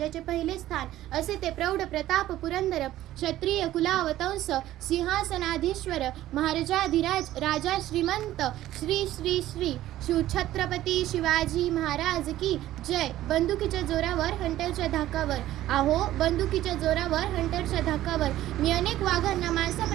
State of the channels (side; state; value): left; quieter; 14.2 dB